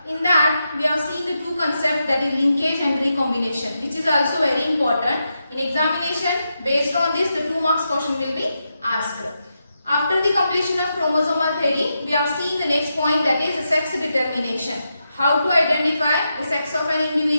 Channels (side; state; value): both; inverted; correlation -0.86